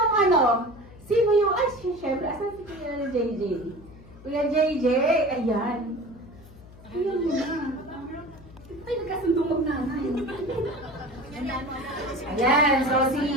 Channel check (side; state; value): left; noise; hum, 20 dB below the sound